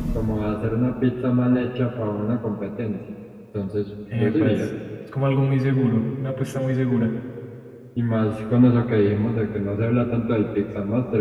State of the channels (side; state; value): both; identical; correlation 1.00